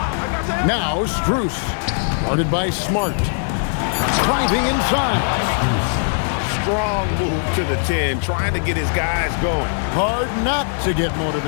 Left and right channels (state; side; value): silent; right; digital silence